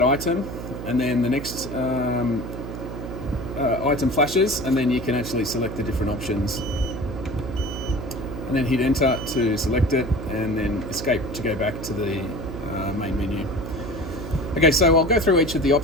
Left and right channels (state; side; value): noise; right; hum, 8 dB below the sound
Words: item, and then the next item flashes, and then you can actually select the different options, and then hit enter to select it, and then escape to go back to the main menu. Okay, so I'll go through each of the